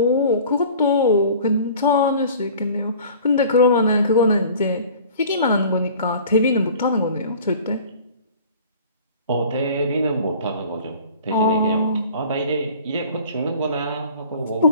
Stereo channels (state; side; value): inverted; both; correlation -0.45